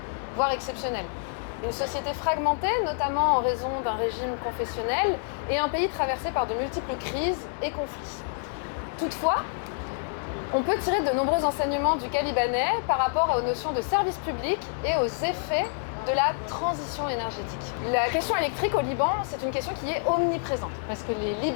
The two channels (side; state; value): right; silent; digital silence